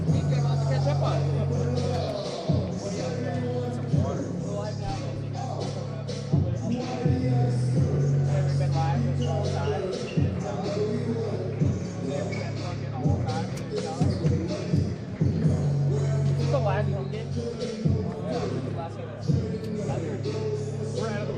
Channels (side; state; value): both; identical; correlation 1.00